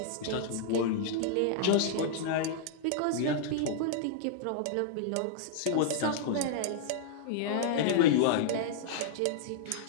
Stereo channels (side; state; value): both; different; correlation -0.01